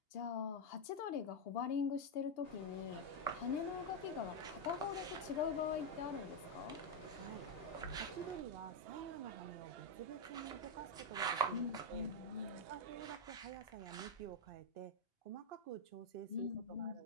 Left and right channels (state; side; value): late; right; 2.8 ms